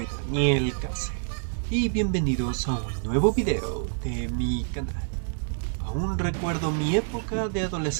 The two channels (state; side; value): silent; left; digital silence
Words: Daniel Case y bienvenidos a un nuevo video de mi canal. Aún recuerdo mi época de